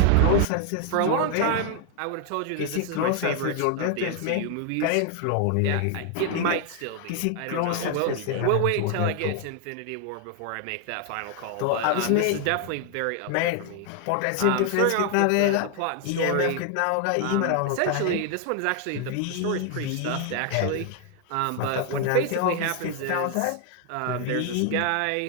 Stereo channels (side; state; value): both; different; correlation 0.00